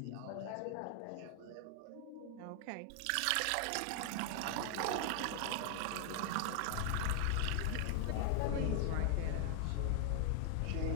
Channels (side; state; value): both; different; correlation 0.00